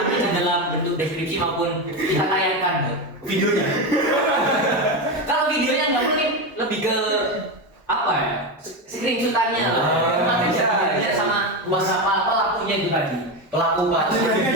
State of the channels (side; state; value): both; normal; correlation 0.15